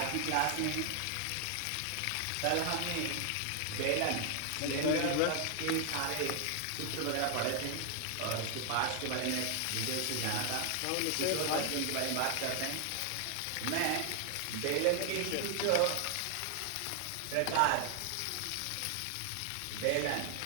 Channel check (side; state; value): both; different; correlation 0.00